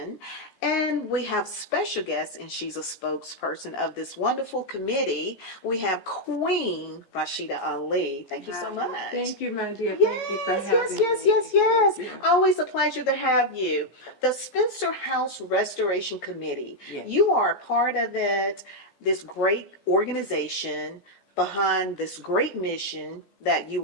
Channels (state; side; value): late; right; 14 ms